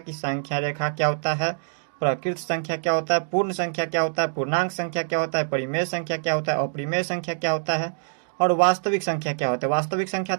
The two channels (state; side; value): silent; left; digital silence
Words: संख्या रेखा क्या होता है, प्रकृत संख्या क्या होता है, पूर्ण संख्या क्या होता है, पूर्णांक संख्या क्या होता है, परिमेय संख्या क्या होता है, अपरिमेय संख्या क्या होता है और वास्तविक संख्या क्या होता है। वास्तविक संख्या